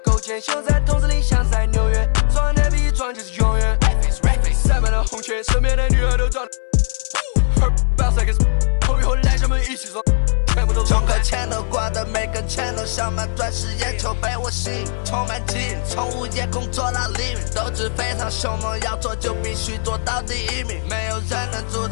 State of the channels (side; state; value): right; silent; 61 dB below the other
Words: 坚，秀在筒子里像在纽约，撞的比撞就是永远。塞满了红圈，身边的女孩都撞。后以后来咱们一起走。充个钱都挂的每根钱都像满钻石眼球被我吸引，充满基因，从午夜工作到黎明，斗志非常凶猛，要做就必须做到第1名，没有人能阻